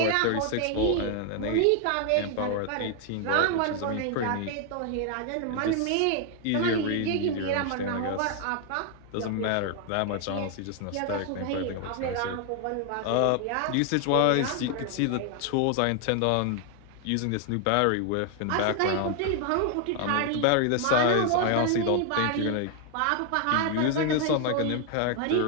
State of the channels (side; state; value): both; different; correlation 0.00